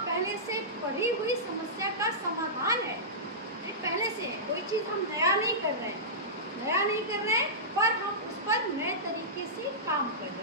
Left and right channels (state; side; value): normal; both; correlation -0.16